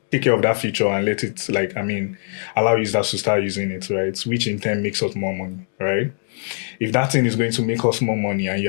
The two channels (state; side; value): silent; right; digital silence